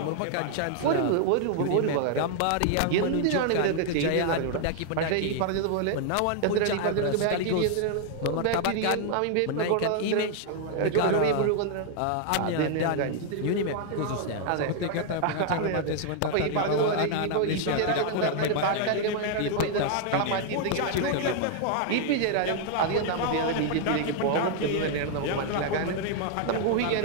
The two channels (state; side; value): different; both; correlation 0.00